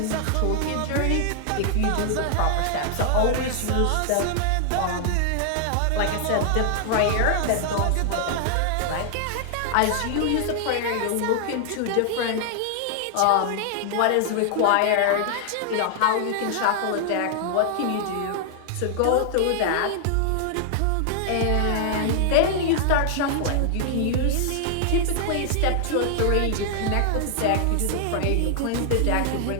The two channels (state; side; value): different; both; correlation 0.00